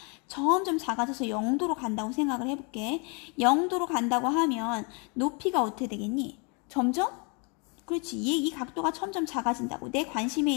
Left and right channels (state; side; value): quieter; right; 33.8 dB